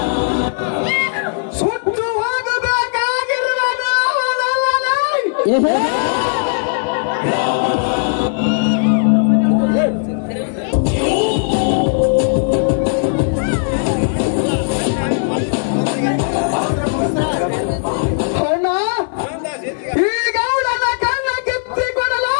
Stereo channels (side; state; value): right; silent; 56 dB below the other